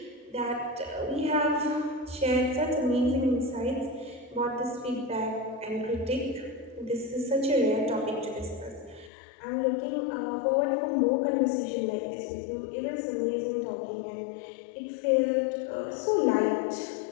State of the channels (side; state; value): right; drops out; at 9.1 s